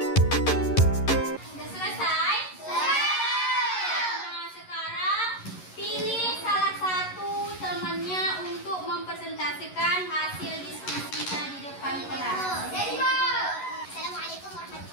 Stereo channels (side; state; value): right; late; 11 ms